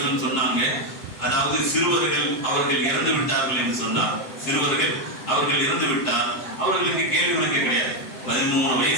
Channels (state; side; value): late; right; 7.5 ms